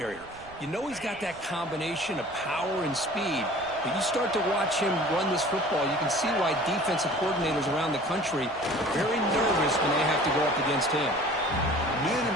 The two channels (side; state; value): right; noise; rumble, 22 dB below the sound